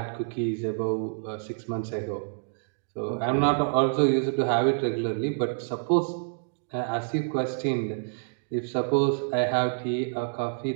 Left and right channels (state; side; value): silent; left; digital silence